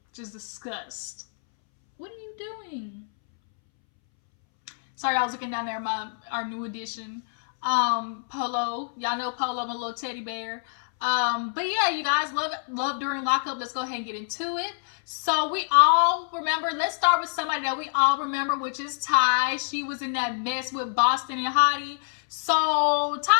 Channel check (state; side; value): silent; right; 61 dB below the other